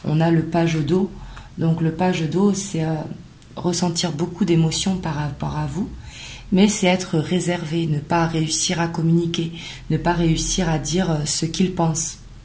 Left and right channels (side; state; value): both; identical; correlation 1.00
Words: On a le page d'eau, donc le page d'eau, ressentir beaucoup d'émotions par rapport à vous, mais c'est être réservé, ne pas réussir à communiquer, ne pas réussir à dire ce qu'il pense.